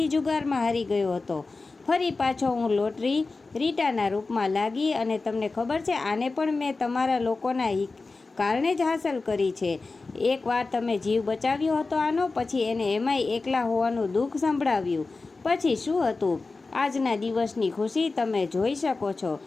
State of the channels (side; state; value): right; quieter; 3.7 dB